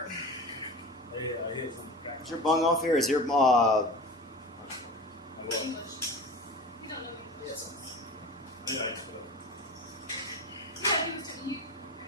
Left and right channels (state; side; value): normal; both; correlation 0.32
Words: Is your bung off here? Is your, English. You don't know English. Yes. Yeah, he was telling you.